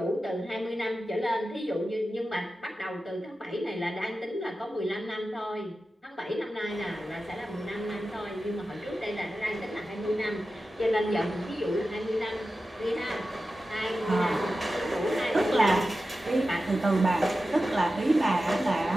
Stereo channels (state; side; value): normal; both; correlation 0.93